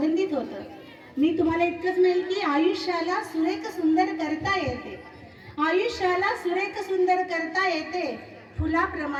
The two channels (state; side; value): identical; both; correlation 1.00